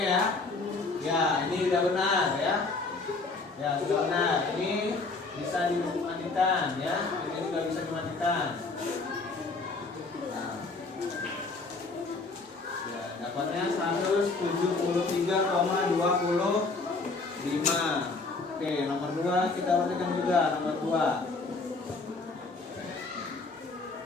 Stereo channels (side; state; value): right; quieter; 3.8 dB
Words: ya. Ya, ini udah benar ya. Ya, sudah benar. Ini bisa dimatikan ya. Ini juga bisa dimatikan. Nah. Ya, dapatnya 173,25. Oke, nomor 2 kita perhatikan juga nomor 2.